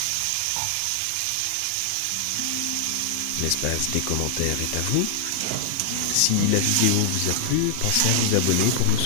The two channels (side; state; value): both; different; correlation -0.01